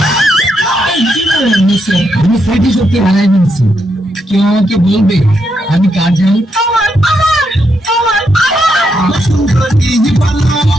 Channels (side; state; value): both; normal; correlation 0.80